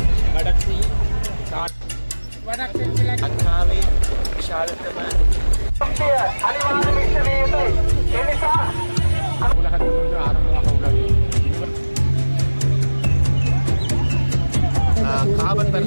கடத்தி அக்காவை விஷாலத்தம உலகத்திலிருந்து ஆரம்பமாக உள்ளது. காவல்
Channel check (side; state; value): both; inverted; correlation -1.00